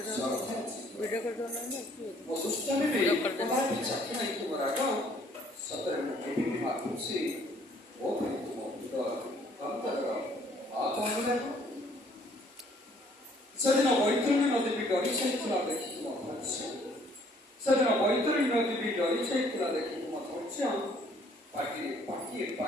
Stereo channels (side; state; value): both; normal; correlation 0.62